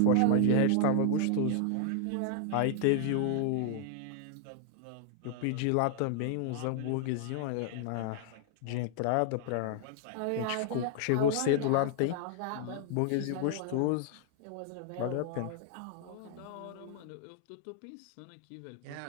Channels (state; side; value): different; both; correlation -0.01